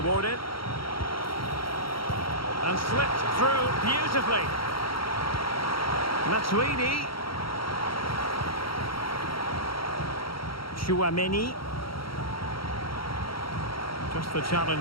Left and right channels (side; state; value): right; late; 0.74 ms